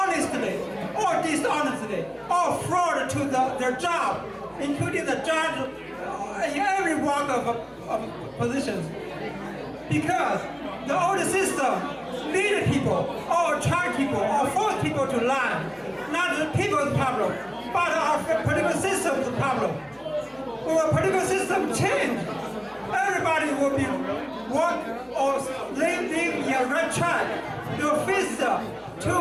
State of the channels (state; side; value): identical; both; correlation 1.00